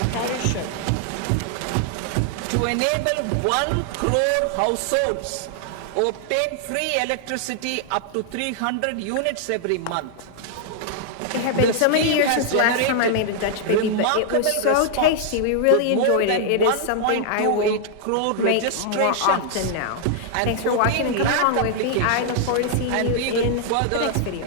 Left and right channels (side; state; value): both; different; correlation -0.01